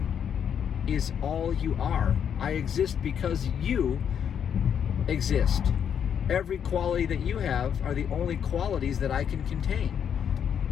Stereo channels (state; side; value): quieter; right; 8.2 dB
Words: is all you are. I exist because you exist. Every quality that you have are the only qualities that I can contain.